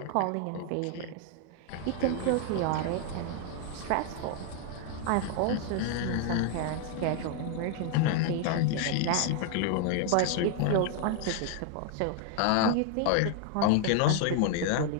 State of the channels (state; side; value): different; both; correlation 0.00